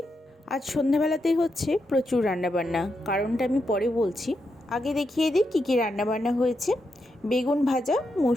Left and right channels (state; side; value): normal; both; correlation 0.84